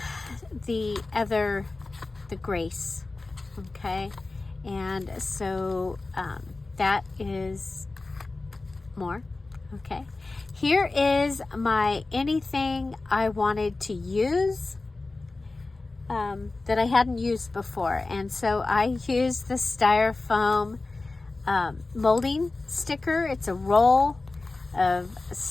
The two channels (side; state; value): right; quieter; 3.4 dB